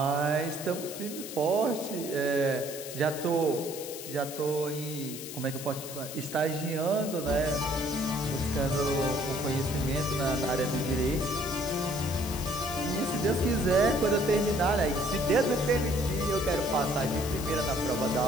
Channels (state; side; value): noise; left; hiss, 10 dB below the sound